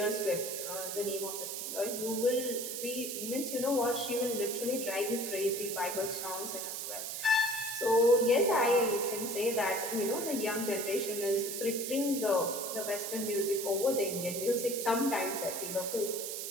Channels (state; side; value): noise; right; hiss, 5 dB below the sound